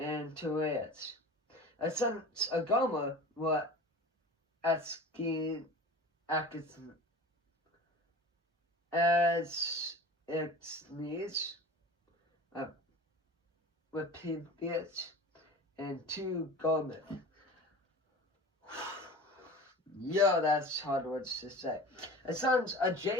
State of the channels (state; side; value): normal; both; correlation 0.37